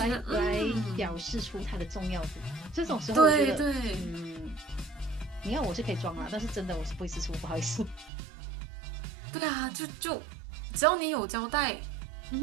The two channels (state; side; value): drops out; left; at 8.1 s